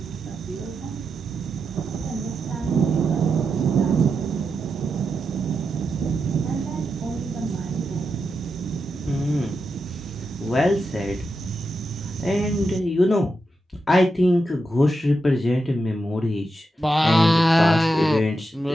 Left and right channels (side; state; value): both; normal; correlation 0.87